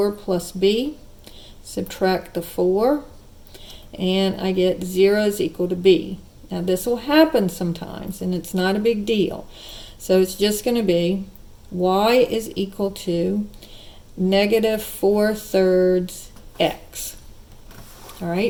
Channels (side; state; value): both; identical; correlation 1.00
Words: plus b. Subtract the 4 and I get 0 is equal to b. Now this will happen sometimes and it's not a big deal. So it's just going to be y is equal to -4/3 x. All